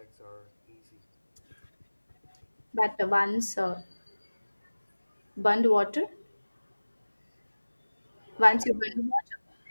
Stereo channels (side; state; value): both; inverted; correlation -1.00